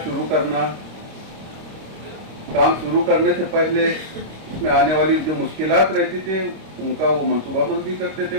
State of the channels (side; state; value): left; late; 26 ms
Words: शुरू करना, काम शुरू करने से पहले उसमें आने वाली जो मुश्किलात रहती थे उनका वो मनसूबाबंदी करते थे,